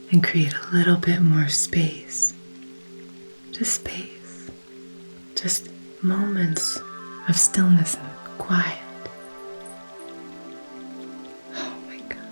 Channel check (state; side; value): inverted; both; correlation -1.00